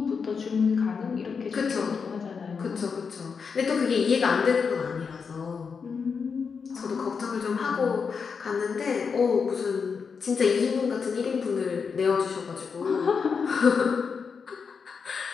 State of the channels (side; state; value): right; quieter; 5.7 dB